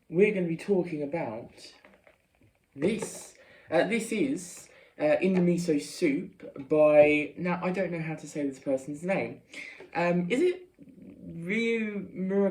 we're going to be talking about this. This is In the Miso Soup by, now I don't know how to say this person's name. Is it Ryu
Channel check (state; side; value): identical; both; correlation 1.00